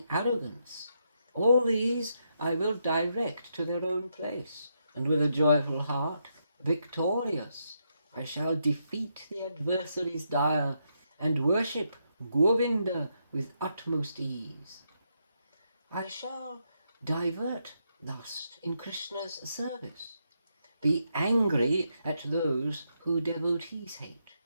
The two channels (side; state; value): both; inverted; correlation -0.80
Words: arrogance, all these I will direct to their own place, and with a joyful heart, victorious, I shall defeat the adversaries dire, and worship Govinda with utmost ease. I shall divert thus in Krishna's service, be angry at those who devotees hate.